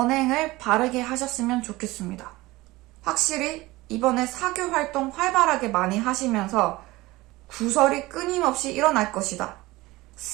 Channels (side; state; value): left; quieter; 19.8 dB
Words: 바르게 하셨으면 좋겠습니다. 확실히 이번에 사교 활동 활발하게 많이 하시면서 구설이 끊임없이 일어날 것이다.